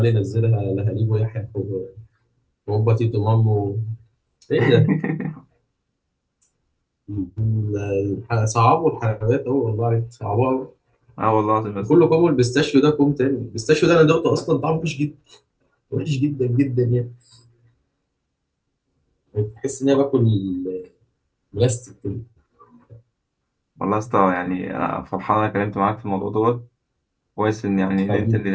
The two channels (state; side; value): identical; both; correlation 1.00